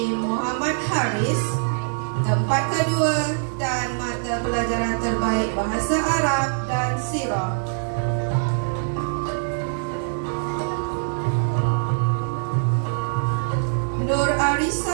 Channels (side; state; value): left; silent; digital silence